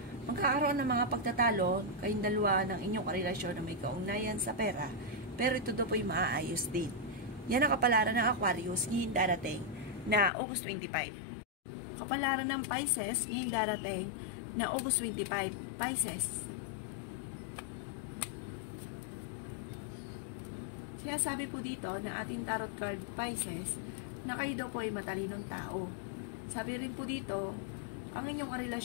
magkakaroon ng mga pagtatalo kayong dalawa ng inyong karelasyon na may kaugnayan sa pera pero ito daw po ay maaayos din. Yan ang kapalaran ng Aquarius ngayong darating na August 25. Kapalaran ng Pisces ngayong darating na August 25. Pisces. Sinasabi po dito na ating tarot card Pisces na kayo daw po ay matalinong tao. Sabi rin po dito, ang inyong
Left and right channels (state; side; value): drops out; right; at 10.3 s